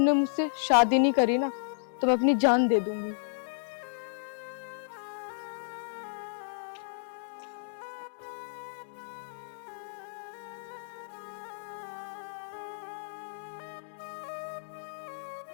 मुझसे शादी नहीं करी ना तो मैं अपनी जान दे दूंगी।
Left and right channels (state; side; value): silent; right; digital silence